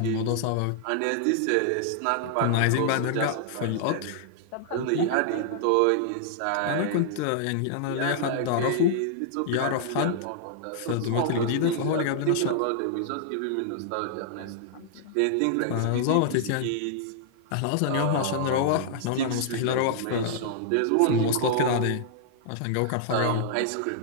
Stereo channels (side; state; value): both; different; correlation -0.01